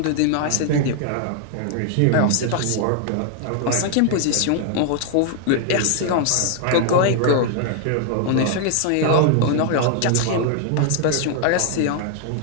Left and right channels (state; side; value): different; both; correlation 0.00